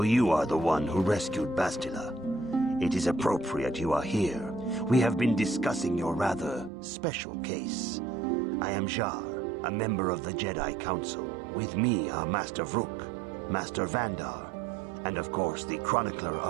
you are the one who rescued Bastila. It is appropriate you are here. We have been discussing your rather special case. I am Jar, a member of the Jedi Council. With me are Master Vrook, Master Vandar, and of course the chronicler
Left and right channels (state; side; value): drops out; left; at 6.7 s